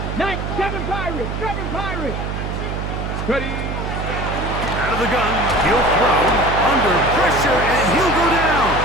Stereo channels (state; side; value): noise; right; hum, 4 dB below the sound